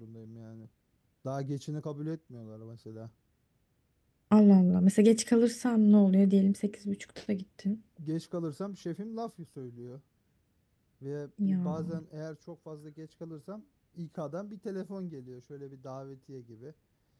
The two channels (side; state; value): both; identical; correlation 1.00